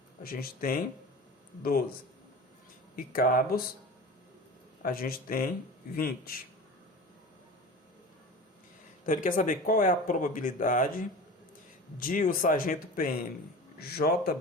a gente tem 12. E cabos, a gente tem 20. Então, ele quer saber qual é a probabilidade de o sargento PM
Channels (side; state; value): both; normal; correlation 0.34